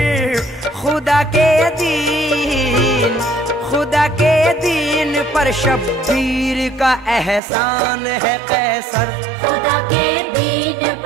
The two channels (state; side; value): drops out; left; at 7.4 s